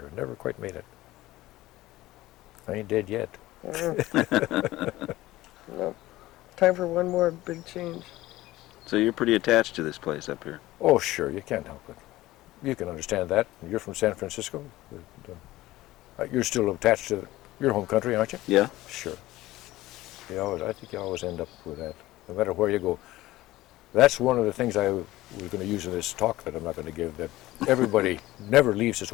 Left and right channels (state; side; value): quieter; right; 17.1 dB